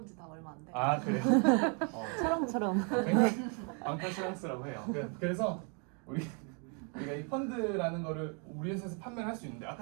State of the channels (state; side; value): quieter; left; 37.6 dB